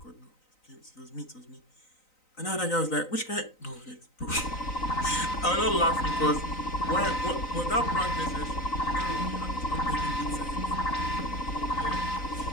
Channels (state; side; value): late; right; 3.9 ms